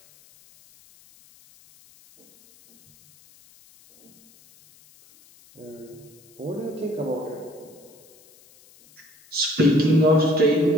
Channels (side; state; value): left; noise; hiss, 28 dB below the sound